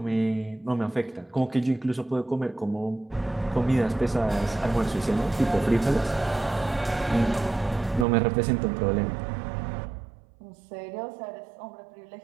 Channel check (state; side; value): drops out; left; at 8.1 s